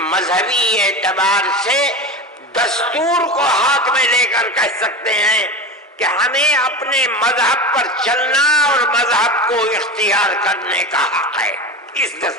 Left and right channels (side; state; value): both; normal; correlation 0.26